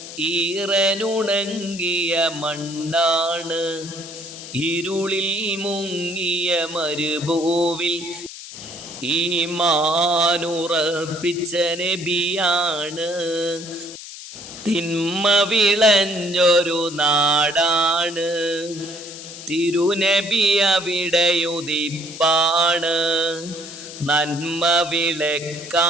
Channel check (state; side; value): noise; left; hiss, 13 dB below the sound